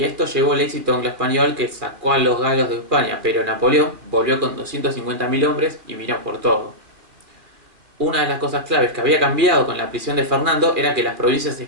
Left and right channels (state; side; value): late; left; 2.3 ms